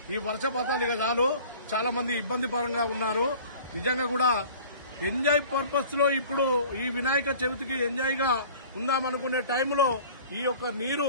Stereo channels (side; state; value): both; inverted; correlation -0.46